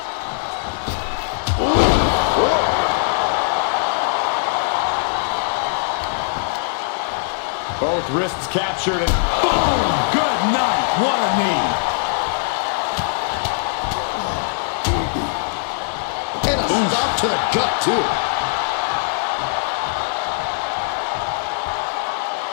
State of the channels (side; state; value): right; silent; digital silence